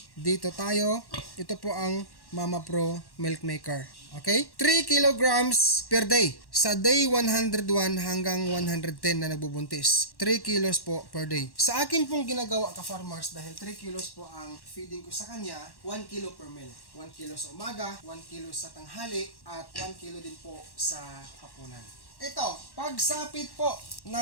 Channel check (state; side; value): late; right; 1.1 ms